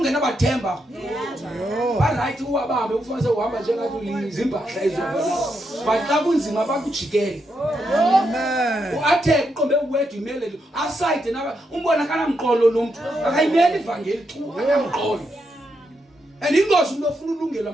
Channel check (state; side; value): normal; both; correlation 0.82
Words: can never temper. Yo. Right, who are ufanele uhamba njengathi izimpahla ezobona. But xa kunzima bakujikele. Amen. Uathe uqombe uwedwa imele aside naba umbona kana mqolo lo muntu akayimeli ivangeli chu akamqolo. And ingozi umuntu ofuna ulungela